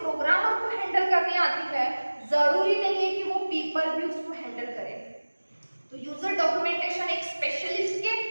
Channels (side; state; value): both; inverted; correlation -1.00